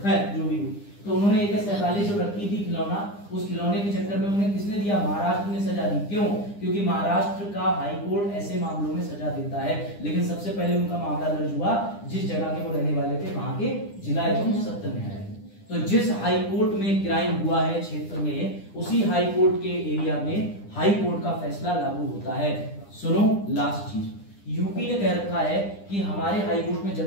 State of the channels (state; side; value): late; right; 9.9 ms